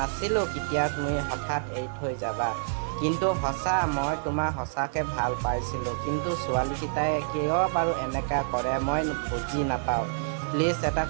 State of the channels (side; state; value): left; silent; digital silence